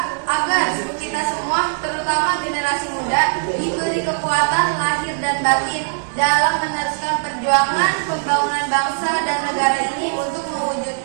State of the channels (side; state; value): left; silent; digital silence